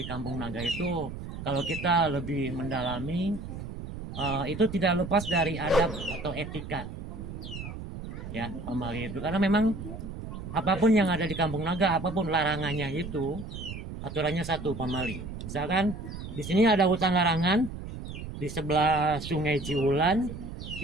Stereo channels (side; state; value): right; noise; rumble, 9 dB below the sound